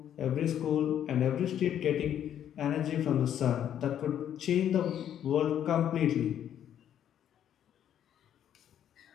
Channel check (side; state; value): right; quieter; 10.1 dB